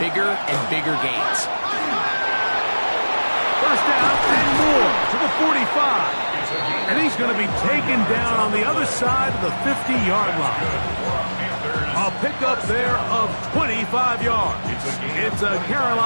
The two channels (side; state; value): both; inverted; correlation -1.00